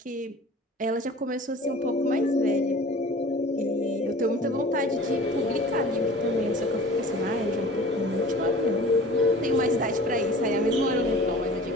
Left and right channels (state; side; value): normal; both; correlation 0.43